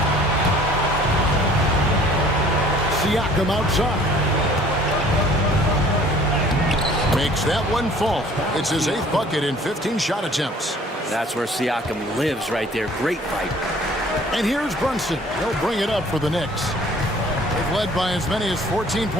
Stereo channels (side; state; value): both; normal; correlation 0.53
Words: Siakam outside. Makes that one fall. It's his 8th bucket in 15 shot attempts. That's where Siakam lives right there. Great fight. And here's Brunson. He'll bring it up for the Knicks. They've led by as many as 14